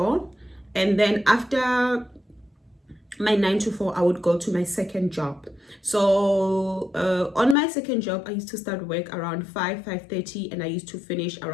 and then after my 9 to 4, I would go to my second job. So on my second job, I used to start work around 5:30, and I used to finish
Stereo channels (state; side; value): drops out; right; at 7.6 s